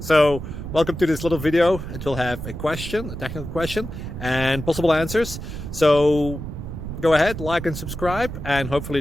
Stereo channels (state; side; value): noise; right; rumble, 8 dB below the sound